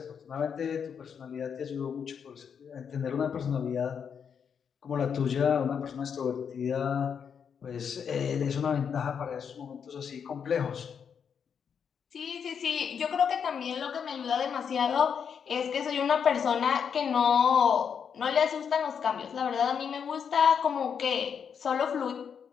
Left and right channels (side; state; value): right; quieter; 7.2 dB